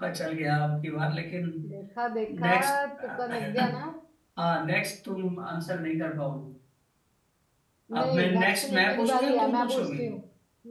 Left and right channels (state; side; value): identical; both; correlation 1.00